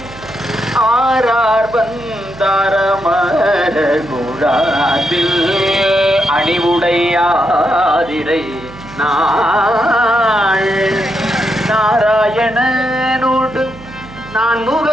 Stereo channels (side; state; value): right; noise; hum, 18 dB below the sound